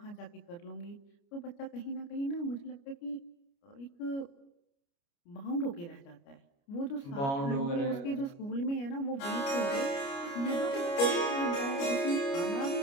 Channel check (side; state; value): right; late; 29 ms